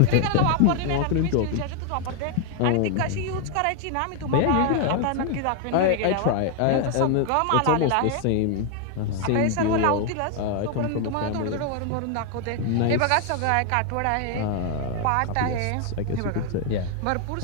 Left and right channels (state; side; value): different; both; correlation 0.00